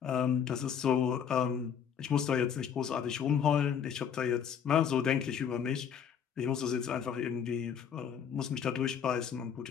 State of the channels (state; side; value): quieter; right; 7.9 dB